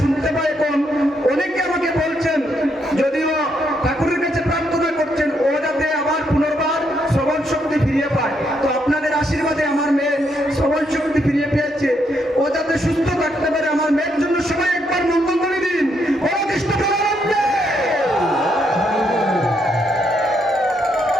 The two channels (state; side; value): normal; both; correlation 0.76